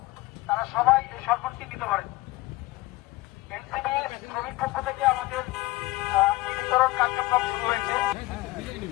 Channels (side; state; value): right; quieter; 19.8 dB